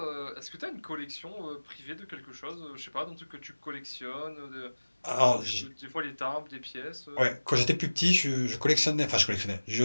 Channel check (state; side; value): inverted; both; correlation -1.00